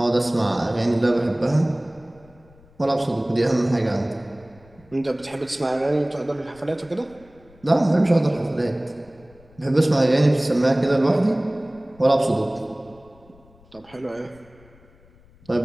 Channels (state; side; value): noise; left; rumble, 27 dB below the sound